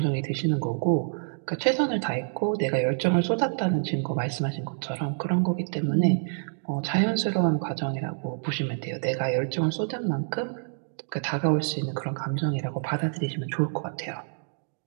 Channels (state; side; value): silent; left; digital silence